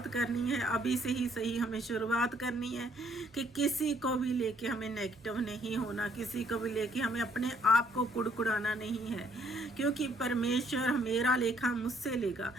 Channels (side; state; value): both; normal; correlation 0.66